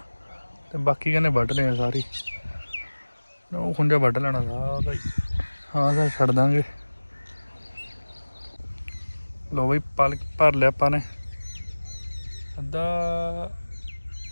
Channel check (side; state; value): both; inverted; correlation -1.00